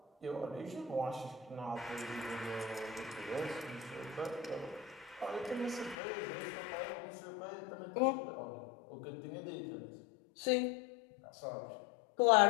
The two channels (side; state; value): right; drops out; at 6.0 s